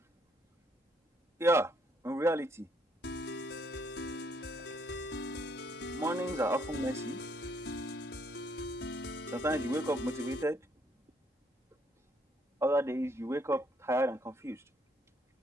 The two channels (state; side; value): normal; both; correlation 0.69